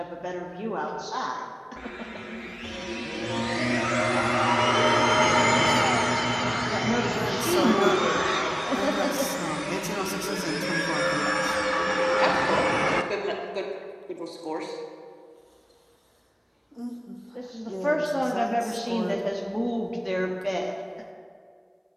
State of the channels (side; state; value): both; identical; correlation 1.00